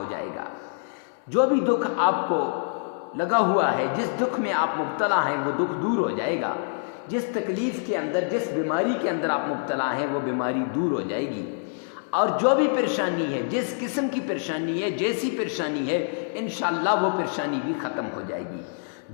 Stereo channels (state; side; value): silent; right; digital silence